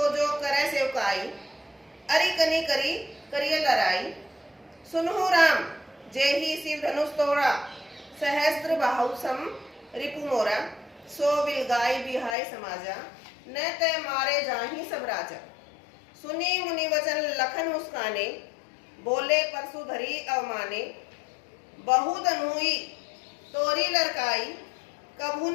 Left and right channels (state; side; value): drops out; right; at 12.4 s